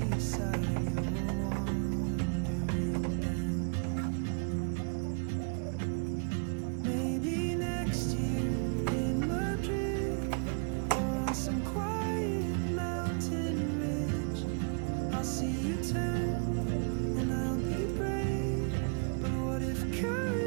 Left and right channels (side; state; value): left; quieter; 38.0 dB